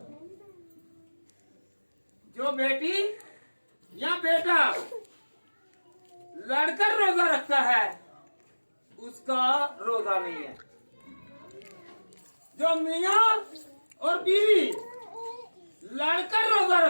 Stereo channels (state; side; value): inverted; both; correlation -1.00